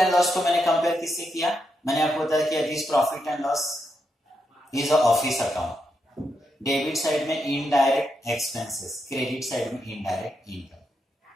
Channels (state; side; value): normal; both; correlation 0.83